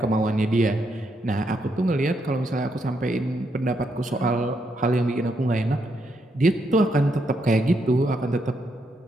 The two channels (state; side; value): normal; both; correlation 0.78